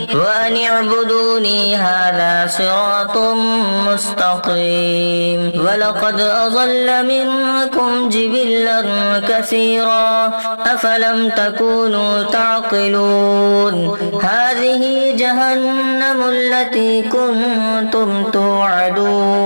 وأن اعبدوني هذا صراط مستقيم ولقد أضل منكم جبلا كثيرا أفلم تكونوا تعقلون هذه جهنم التي كنتم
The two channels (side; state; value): both; inverted; correlation -1.00